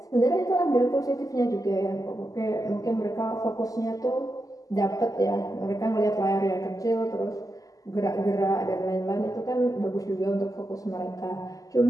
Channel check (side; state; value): right; late; 0.17 ms